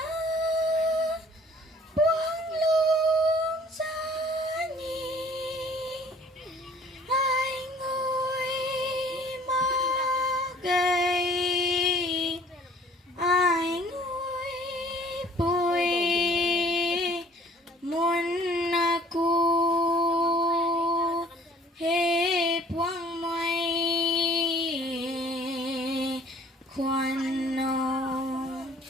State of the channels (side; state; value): both; normal; correlation 0.54